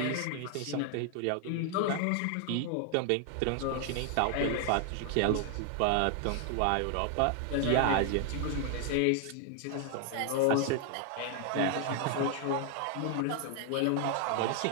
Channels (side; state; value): both; different; correlation 0.00